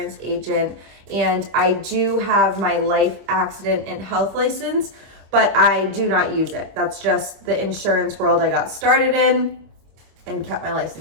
agent, and I do have my life, accident, and health license, but I do not use it. That's just the insurance world I got started in and kept my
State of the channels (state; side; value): late; left; 26 ms